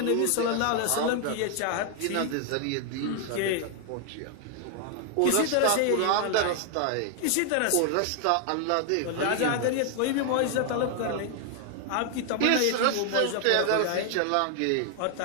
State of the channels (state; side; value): different; both; correlation 0.00